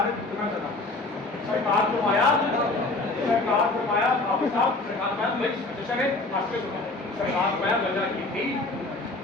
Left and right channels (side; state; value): right; quieter; 3.1 dB